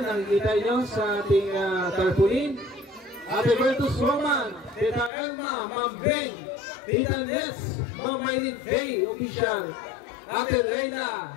nakikita nyo sa ating tarpaulin. Ate Bertus Roman, Tita Elma, Ma'am Beng, Tita Ness, Ma'am Maylin Bay, Official, Ate Reyna,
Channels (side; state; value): right; drops out; at 5.1 s